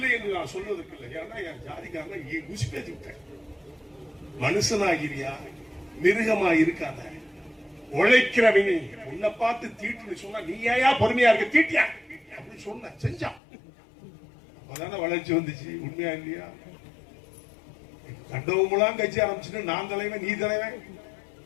என்று நான் சொல்வதற்கு இல்லை. ஏன்னா என் ஜாதிக்காரங்க குசி பேசி விட்டேன். மனுஷனாகிறியா, மிருகமா இருக்காத, உழைக்கிறவங்க உன்னை பார்த்து தீட்டுன்னு சொன்னா நீ ஏயா பொறுமையா இருக்க, தீட்டியா அப்படின்னு சொன்ன செஞ்சான். அப்பதானே வளர்ச்சி வந்துச்சு. உண்மையா இல்லையா? கண்டவங்களாம் கட்சி ஆரம்பிச்சுட்டு நான் தலைவன் நீ தலைவன்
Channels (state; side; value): drops out; right; at 13.4 s